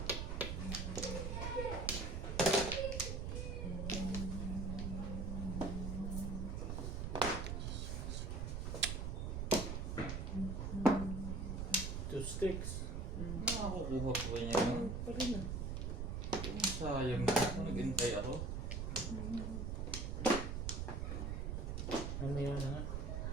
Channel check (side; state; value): right; noise; rumble, 2 dB below the sound